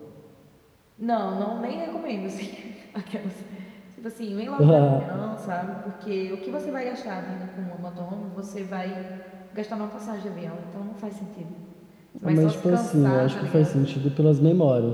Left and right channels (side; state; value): both; identical; correlation 1.00